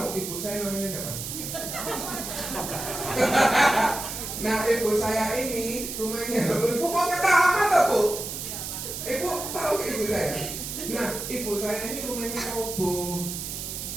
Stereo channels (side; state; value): right; noise; hiss, 6 dB below the sound